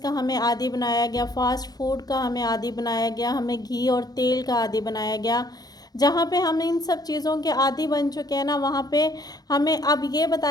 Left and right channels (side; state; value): right; late; 0.19 ms